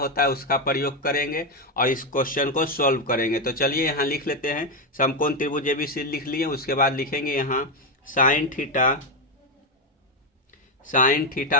है उसका प्रयोग करेंगे और इस क्वेश्चन को सॉल्व करेंगे। तो चलिए यहाँ लिख लेते हैं। समकोण त्रिभुज एबीसी लिख लिए। उसके बाद लिखेंगे यहाँ साइन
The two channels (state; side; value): normal; both; correlation 0.07